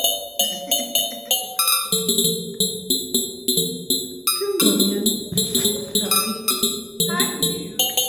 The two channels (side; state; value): both; normal; correlation 0.97